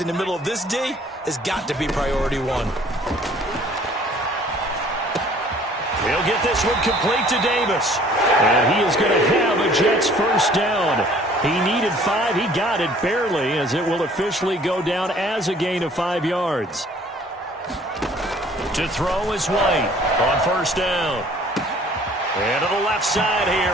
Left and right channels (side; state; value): both; normal; correlation 0.55